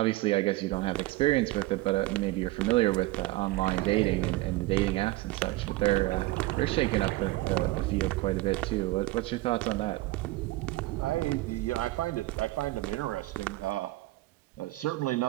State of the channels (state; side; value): quieter; left; 19.2 dB